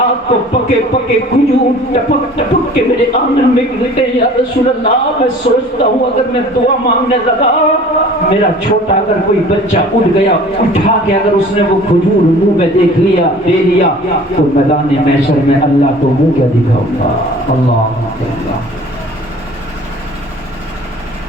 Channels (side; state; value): both; normal; correlation 0.47